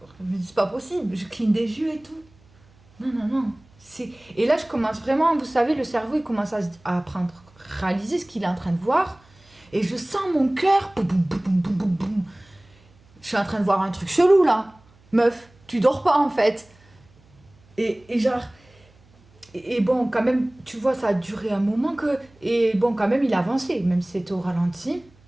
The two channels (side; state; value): right; noise; hum, 29 dB below the sound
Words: Je me dis, c'est pas possible, je cligne des yeux et tout. Non, non, non. Et là, je commence vraiment, vous savez, le cerveau, il commence à réaliser ce qu'il est en train de voir. Et je sens mon cœur. Boum, boum, boum, boum, boum, boum. Je suis en train de voir un truc chelou là. Meuf, tu dors pas en fait. Et genre. Et bon, quand même, tu vois, ça a duré un moment que. Et bon, quand même, il a avancé, même si c'était au ralenti.